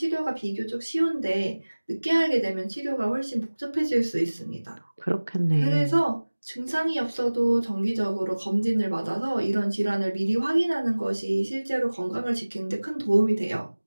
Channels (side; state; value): both; inverted; correlation -1.00